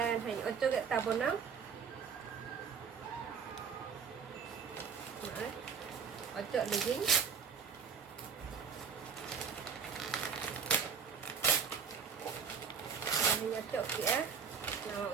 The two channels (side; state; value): left; quieter; 6.6 dB